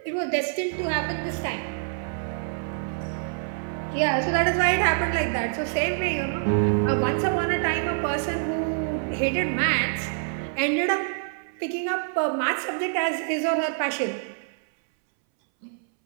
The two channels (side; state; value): left; silent; 61 dB below the other